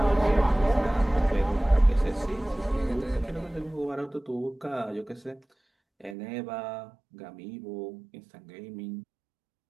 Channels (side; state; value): left; drops out; at 6.2 s